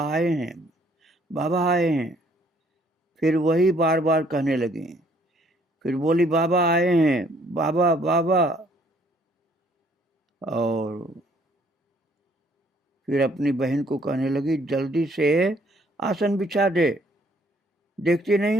आए हैं, बाबा आए हैं। फिर वही बार बार कहने लगी। फिर बोली, बाबा आए हैं, बाबा बाबा। और फिर अपनी बहन को कहने लगी, जल्दी से आसन बिछा दे, देखती नहीं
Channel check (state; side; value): normal; both; correlation 0.63